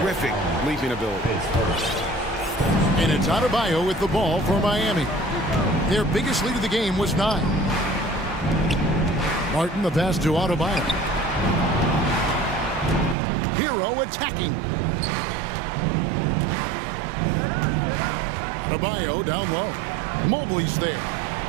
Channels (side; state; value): left; drops out; at 13.2 s